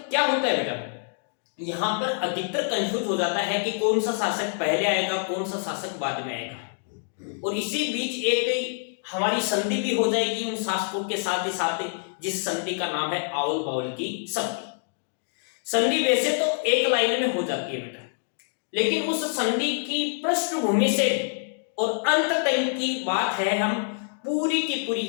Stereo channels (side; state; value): right; silent; digital silence